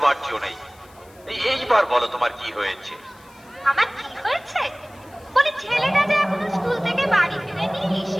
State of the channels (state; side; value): noise; left; hiss, 27 dB below the sound